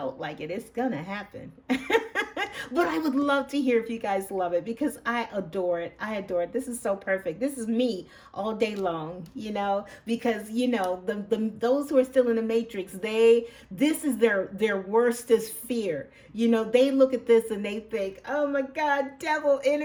like it, it's gonna happen. But I would love to hear if you guys love it, because I adore it. I adore it. This is so perfect. This is me all day long, you know, because you know, those who are still in the matrix, this is their worstest fear. You know, they look at this and they think, oh my God, devil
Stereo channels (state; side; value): identical; both; correlation 1.00